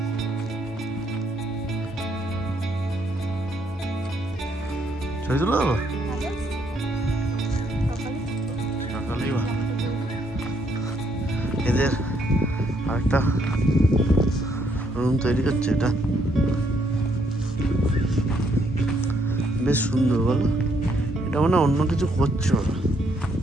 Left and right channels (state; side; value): normal; both; correlation 0.71